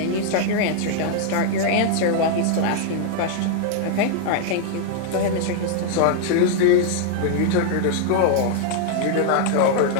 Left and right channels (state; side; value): different; both; correlation -0.01